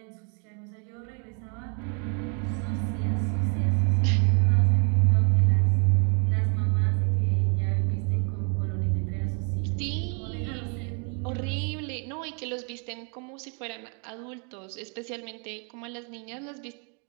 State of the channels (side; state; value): left; quieter; 38.5 dB